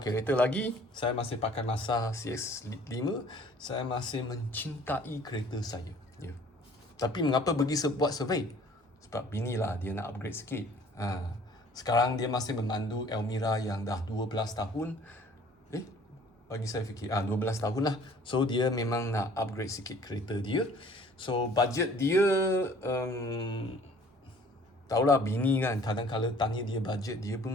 kereta lagi. Saya masih pakai Mazda CX-5. Saya masih mencintai kereta saya. Ya. Tapi mengapa pergi buat survey? Sebab bini lah dia nak upgrade sikit. Sekarang dia masih memandu Elmira yang dah 12 tahun. Bagi saya fikir 12 tahun lah. So dia memang nak upgrade sikit kereta dia. So budget dia tahulah bini kan, kadang-kadang tanya dia budget, dia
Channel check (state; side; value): normal; both; correlation 0.53